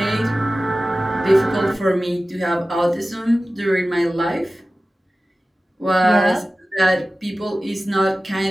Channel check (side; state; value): both; normal; correlation 0.96